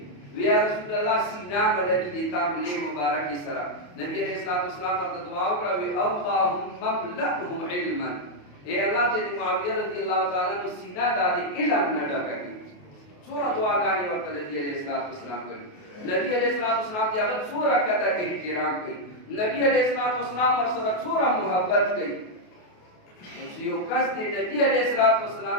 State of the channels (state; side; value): late; right; 28 ms